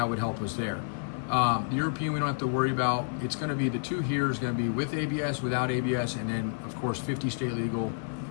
would help us there. The European we don't have to worry about. It's going to be the 2 here is going to be with ABS, without ABS, and then of course 50 state legal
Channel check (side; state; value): right; silent; digital silence